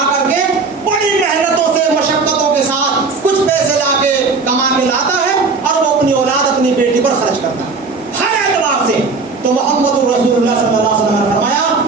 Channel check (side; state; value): left; quieter; 4.3 dB